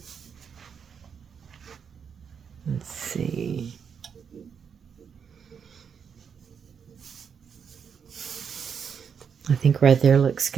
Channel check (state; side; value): quieter; left; 6.9 dB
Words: Let's see. I think right there looks